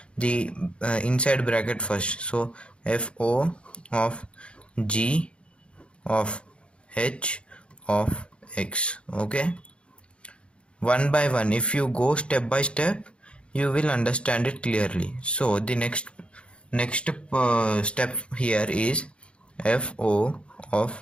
the inside bracket first. So fo of g of h of x. Okay, one by one, if you go step by step, you will understand it clearly. So the next step here is fo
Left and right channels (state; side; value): late; right; 0.058 ms